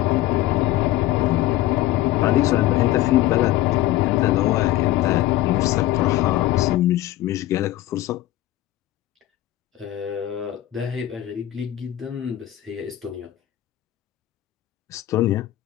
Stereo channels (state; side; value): quieter; right; 14.9 dB